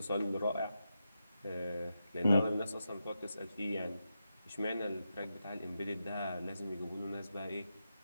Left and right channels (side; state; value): both; inverted; correlation -0.88